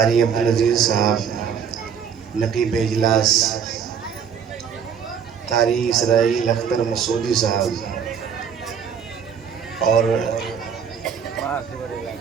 अब्दुल अजीज साहब, नकीब इजलास कारी इसराइल अख्तर मसूदी साहब, और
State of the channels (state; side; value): quieter; left; 7.3 dB